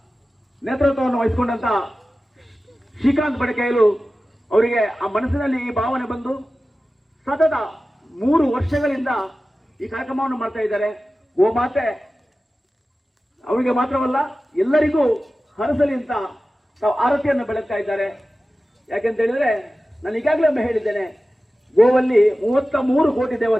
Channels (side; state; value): both; normal; correlation 0.95